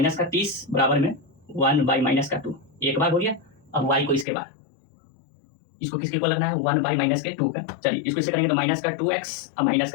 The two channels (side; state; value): right; drops out; at 4.2 s